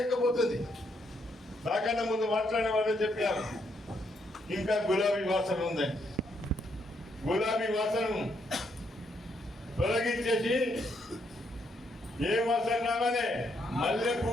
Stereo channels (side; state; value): both; normal; correlation 0.75